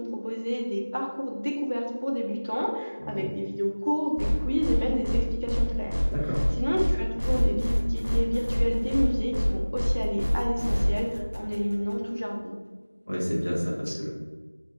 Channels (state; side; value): inverted; both; correlation -1.00